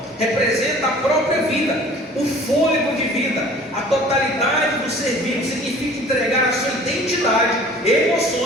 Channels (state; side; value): normal; both; correlation 0.48